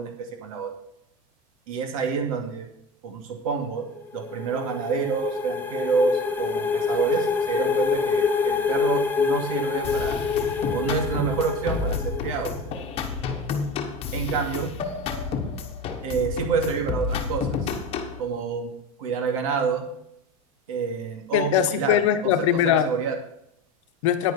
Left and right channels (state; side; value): normal; both; correlation 0.29